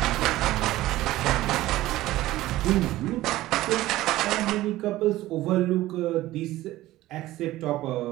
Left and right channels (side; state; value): left; quieter; 16.3 dB